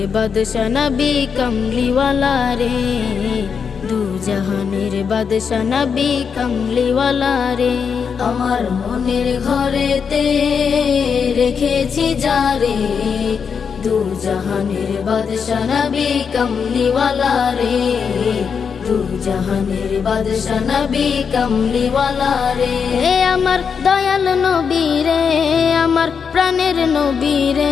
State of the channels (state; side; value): quieter; right; 6.4 dB